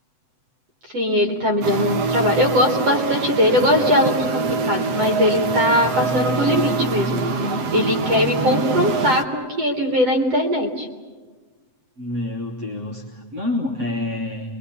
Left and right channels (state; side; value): late; left; 7.9 ms